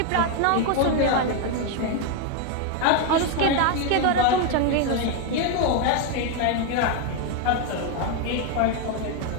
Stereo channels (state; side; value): different; both; correlation 0.01